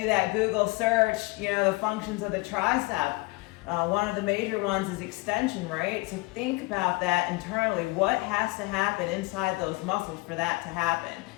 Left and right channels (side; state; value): right; quieter; 24.1 dB